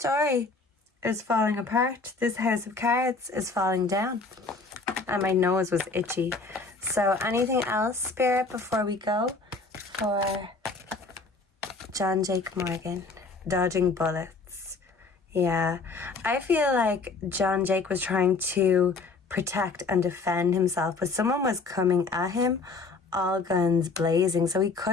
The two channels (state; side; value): quieter; right; 4.0 dB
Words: is falling apart. This house of cards is falling down. And my nose was itchy. So anything else, Spirit, before we go for Jon Jake Morgan? Dodging bullets. Yeah. I feel like Jon Jake was trying to protect and defend himself, but someone was coming at him, all guns blazing. So he